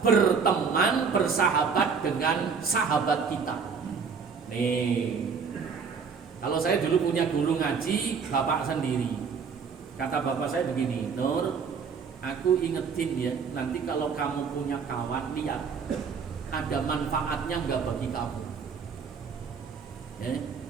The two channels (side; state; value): left; quieter; 5.8 dB